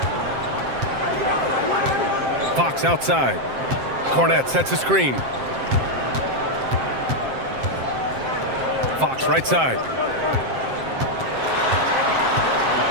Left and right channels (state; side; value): late; left; 7.6 ms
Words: Fox outside. Cornette sets a screen. Fox right side.